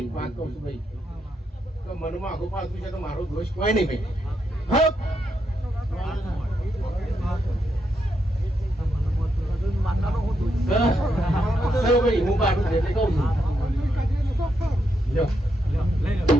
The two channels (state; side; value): normal; both; correlation 0.81